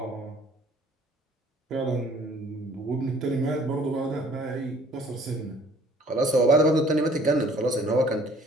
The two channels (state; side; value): normal; both; correlation 0.55